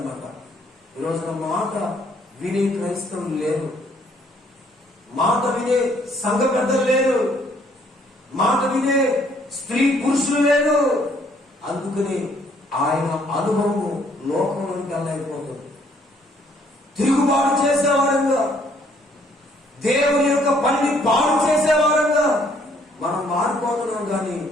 ఈ రోజున మాట వినే క్రైస్తవులు లేరు, మాట వినే సంఘ పెద్దలు లేరు, మాట వినే స్త్రీ పురుషులు లేరు. అందుకని ఆయన అనుభవము లోకంలోకి వెళ్ళైపోతుంది. తిరుగుబాటు చేసేవారంగా, దేవుని యొక్క పనిని పాడు చేసేవారంగా మనం మారిపోతున్నాం. కానీ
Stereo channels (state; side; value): normal; both; correlation 0.65